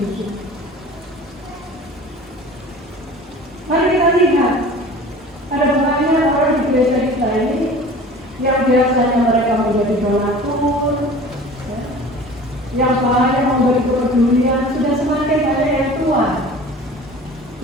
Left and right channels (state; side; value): normal; both; correlation 0.42